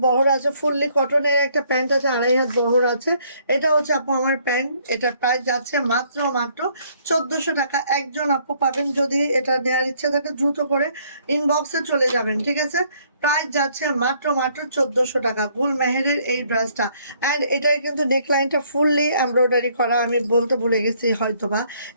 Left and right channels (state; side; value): inverted; both; correlation -0.65